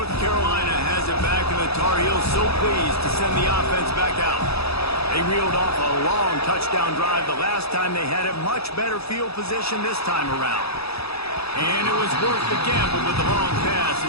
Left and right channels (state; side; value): late; right; 0.78 ms